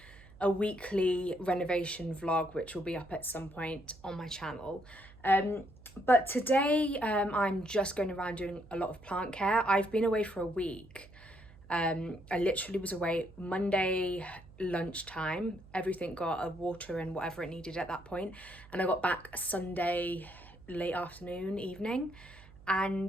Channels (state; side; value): noise; right; hum, 21 dB below the sound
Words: weekly renovation vlog, which will be up at some point on my channel. But today I'm just going around doing a lot of plant care. I've been away for a week. I literally was away Monday lunchtime. Everything got a water and whatever it needed at that point, and I got back Sunday late afternoon, evening,